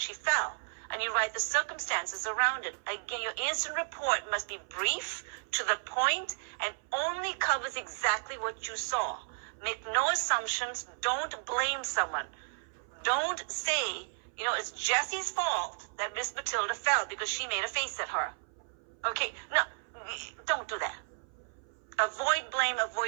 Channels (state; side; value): silent; left; 56 dB below the other